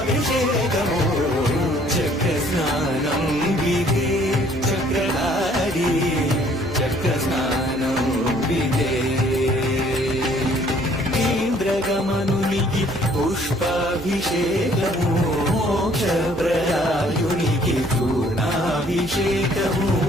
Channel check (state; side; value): noise; right; hum, 15 dB below the sound